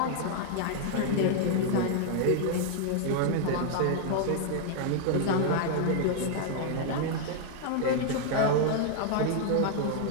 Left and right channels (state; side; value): different; both; correlation -0.01